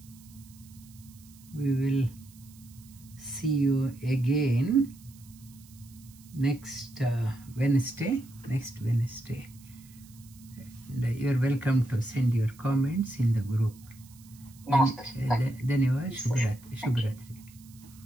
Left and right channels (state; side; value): noise; right; hiss, 24 dB below the sound